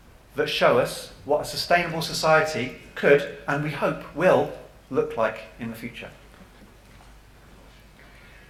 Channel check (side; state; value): both; identical; correlation 1.00